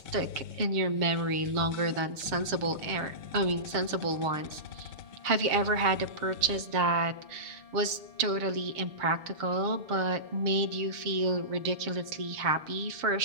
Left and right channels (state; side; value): late; left; 6.7 ms